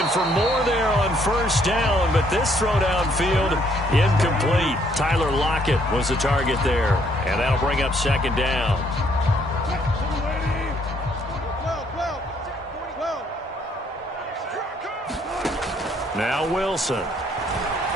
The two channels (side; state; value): both; normal; correlation 0.67